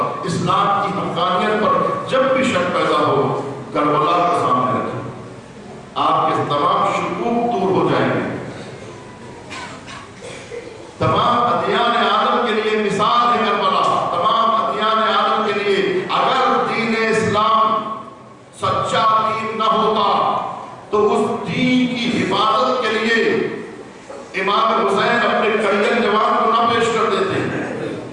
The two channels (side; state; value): both; identical; correlation 1.00